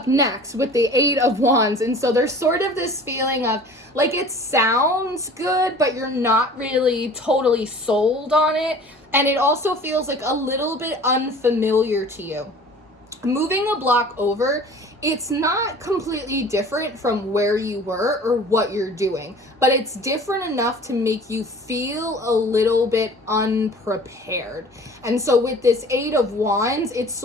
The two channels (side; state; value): both; normal; correlation 0.45